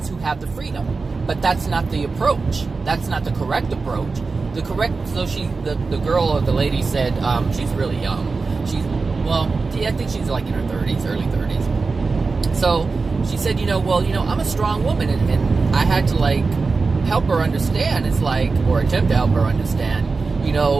who have the freedom. But that's not the approach. That's not the correct approach. The girl or the lady said, she's really young. I think she's like in her 30s, early 30s. So she said, I'm a strong woman, and I had to help her understand. It's or attempt to help her understand.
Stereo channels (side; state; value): left; quieter; 4.2 dB